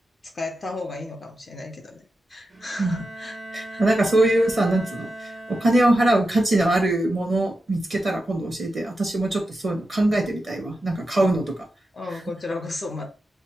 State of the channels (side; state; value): both; normal; correlation 0.90